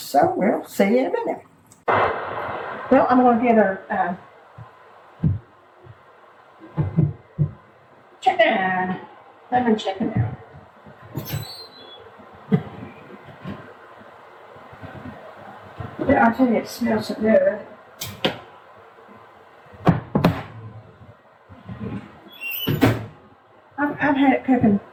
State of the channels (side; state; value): both; identical; correlation 1.00